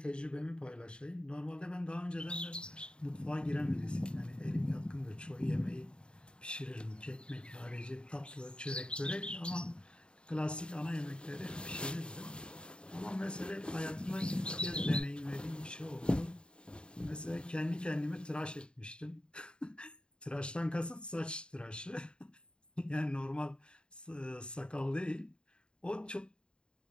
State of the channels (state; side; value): late; right; 0.051 ms